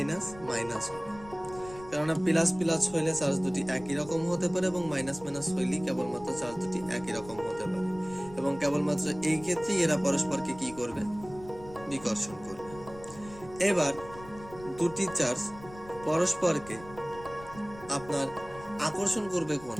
মাইনাস হবে। কেননা প্লাস প্লাস হইলে চার্জ দুটি একই রকম হতে পারে এবং মাইনাস মাইনাস হইলেই কেবলমাত্র চার্জ দুটি একই রকম হতে পারে, এবং কেবলমাত্র এই ক্ষেত্রে এরা পরস্পরকে কি করবে? বিকর্ষণ করবে। এবার দুটি চার্জ পরস্পরকে আপনার আকর্ষণ করবে কোন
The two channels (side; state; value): left; noise; rumble, 18 dB below the sound